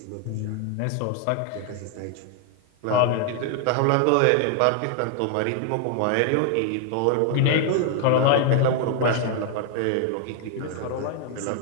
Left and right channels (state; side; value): different; both; correlation 0.00